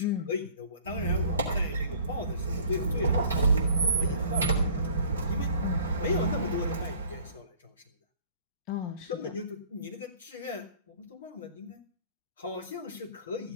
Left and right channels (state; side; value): inverted; both; correlation -0.52